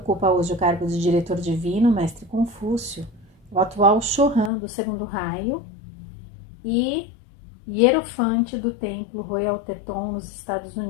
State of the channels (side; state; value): right; drops out; at 4.5 s